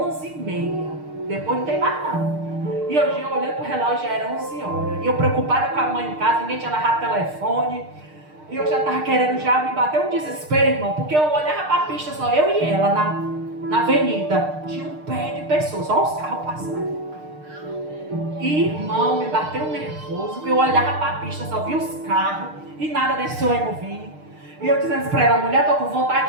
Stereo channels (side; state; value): left; late; 6.6 ms